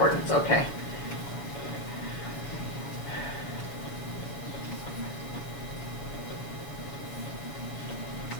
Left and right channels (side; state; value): right; late; 7.3 ms